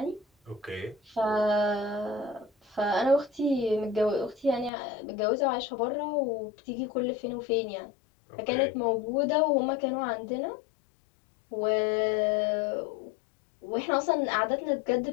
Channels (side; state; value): right; drops out; at 4.7 s